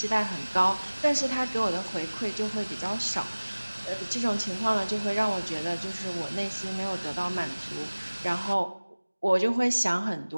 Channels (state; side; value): inverted; both; correlation -1.00